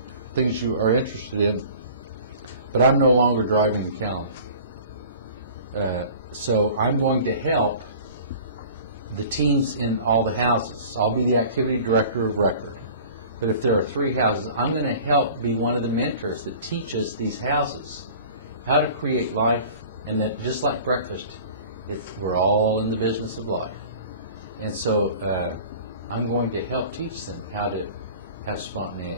things you are interested in, but I'm no longer driving the calendar. So I'm going to help the teams in all the houses. I'll be the activity director of record. But if there are 3 houses, I'm going to help be one of the mentors that teaches these houses how to create life, and that just like breakfast, we're all in the business of life. And so I'm going to help teach them how to have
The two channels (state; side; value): inverted; both; correlation -0.44